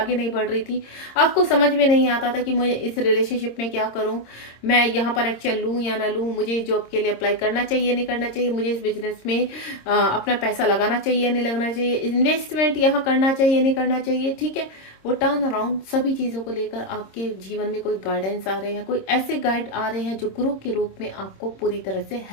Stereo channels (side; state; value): right; late; 26 ms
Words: नहीं बढ़ रही थी, आपको समझ में नहीं आता था कि मुझे इस रिलेशनशिप में क्या करूं, मैं यहाँ पर एक्शन लूं या ना लूं, मुझे जॉब के लिए अप्लाई करना चाहिए नहीं करना चाहिए, मुझे इस बिजनेस में अपना पैसा लगाना चाहिए नहीं लगाना चाहिए, इन्वेस्टमेंट यहाँ करना चाहिए नहीं करना चाहिए, ठीक है। वो टर्न अराउंड सभी चीजों को लेकर आपके जीवन में कोई गाइडेंस आ रहे हैं, कोई ऐसे गाइड आ रहे हैं जो गुरु के रूप में आपको पूरी तरह से